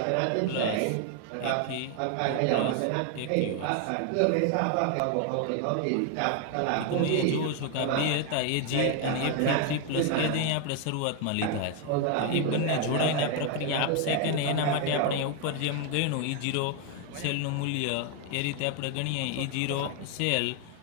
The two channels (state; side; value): different; both; correlation 0.01